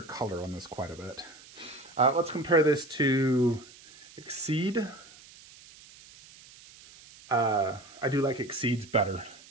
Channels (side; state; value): right; noise; hiss, 21 dB below the sound